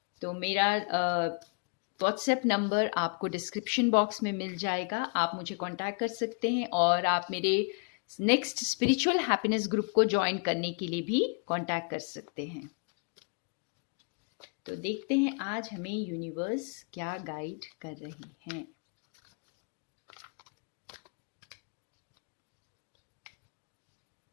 तो मेरा व्हाट्सएप नंबर आपको डिस्क्रिप्शन बॉक्स में मिल जाएगा, आप मुझे कांटेक्ट कर सकते हैं और आप मेरे नेक्स्ट स्पिरिचुअल हैप्पीनेस ग्रुप को ज्वाइन करने के लिए भी कांटेक्ट कर सकते हैं। तो देखते हैं आज हमें यूनिवर्स क्या गाइड कर रही हैं।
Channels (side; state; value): right; quieter; 38.3 dB